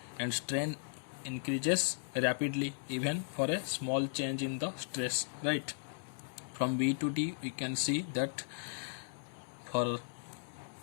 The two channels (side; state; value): right; silent; 53 dB below the other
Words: and strain increases rapidly even for a small change in the stress, right. From B to D we can see that for